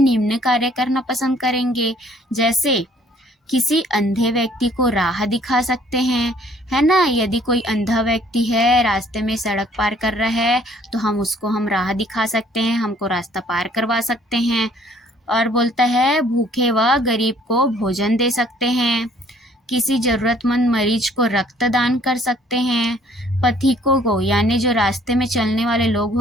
कार्य करना पसंद करेंगे, जैसे किसी अंधे व्यक्ति को राह दिखा सकते हैं, है ना। यदि कोई अंधा व्यक्ति है, रास्ते में सड़क पार कर रहा है, तो हम राह दिखा सकते हैं, हमको रास्ता पार करवा सकते हैं। और बोलता है, भूखे व गरीब को भोजन दे सकते हैं। किसी जरूरतमंद मरीज को रक्तदान कर सकते हैं। पथिकों को यानी जो रास्ते में चलने वाले लोग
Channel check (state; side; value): normal; both; correlation 0.60